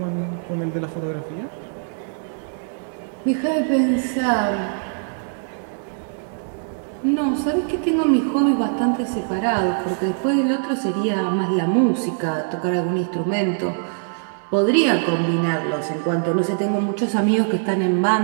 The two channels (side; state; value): left; silent; digital silence